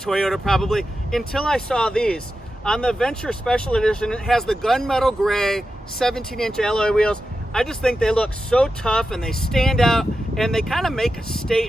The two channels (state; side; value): normal; both; correlation 0.91